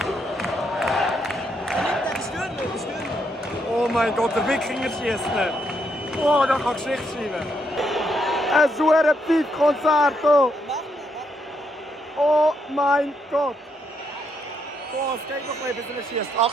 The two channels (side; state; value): both; normal; correlation 0.77